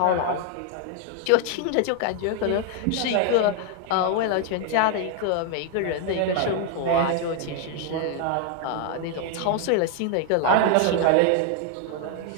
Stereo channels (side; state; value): both; different; correlation 0.00